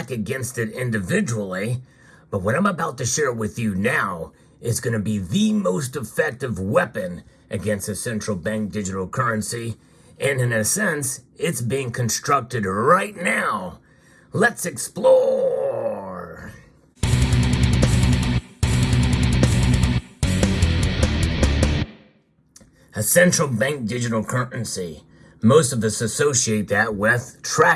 against it individually. But what I'm about to share with you now is going to be the most effective weapon against a central bank digital currency. And in a sense, it's being constructed right now. Let's explore. A central bank digital currency. Most of us associate that with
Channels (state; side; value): identical; both; correlation 1.00